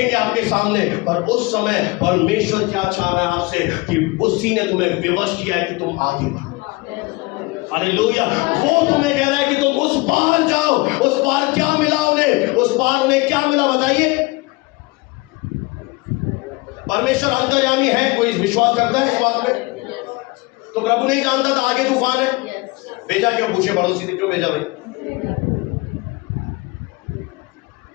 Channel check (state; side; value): quieter; right; 24.0 dB